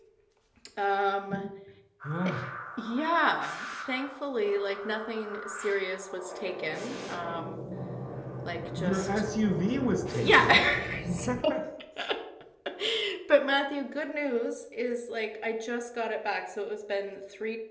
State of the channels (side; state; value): both; identical; correlation 1.00